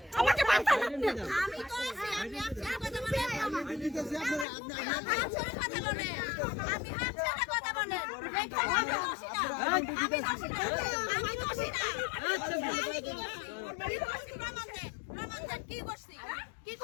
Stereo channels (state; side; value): drops out; right; at 4.5 s